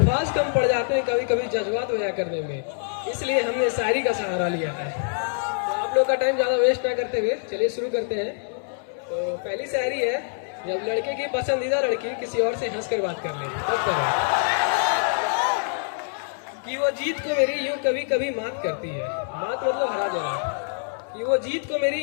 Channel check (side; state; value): right; silent; 62 dB below the other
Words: कम पड़ जाते हैं कभी कभी जज्बात बयां करने में, इसलिए हमने शायरी का सहारा लिया है। तो आप लोग का टाइम ज़्यादा वेस्ट ना करते हुए चलिए शुरू करते हैं। तो पहली शायरी है, जब लड़के की पसंदीदा लड़की किसी और से हंस कर बात कर ले तब करें कि वो जीत को मेरी यूं कभी कभी मात करती है। मात मतलब हरा देना। कि वो जीत को मेरी